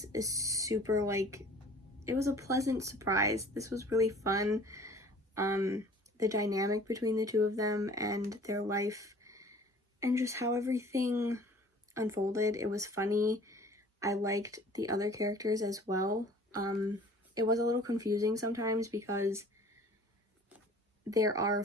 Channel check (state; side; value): normal; both; correlation 0.49